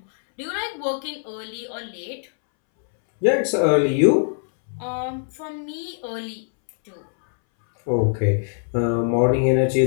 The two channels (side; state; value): right; silent; 64 dB below the other